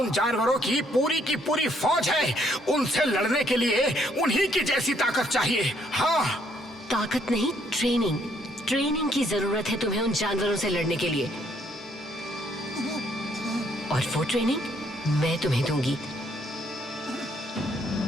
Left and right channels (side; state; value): both; normal; correlation 0.68